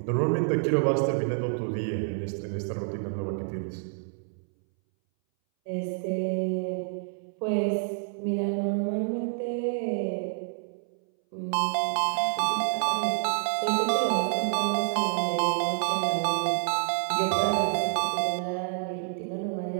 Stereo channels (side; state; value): left; silent; 59 dB below the other